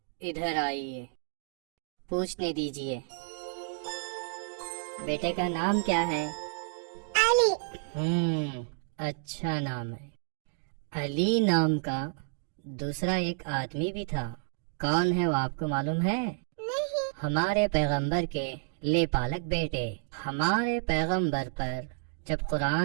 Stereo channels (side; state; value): left; silent; digital silence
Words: इधर आइए, पूछने दीजिए। बेटे का नाम क्या है? अली। अच्छा नाम है। अली नाम का दूसरा एक आदमी भी था, कौन है वो आपको मालूम है? नहीं। हमारे पैगंबर के लेपालक बेटे। हमारे पैगंबर पर जब